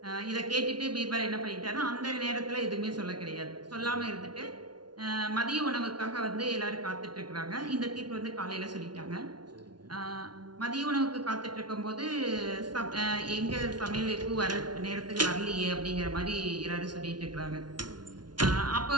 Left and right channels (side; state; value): left; late; 0.70 ms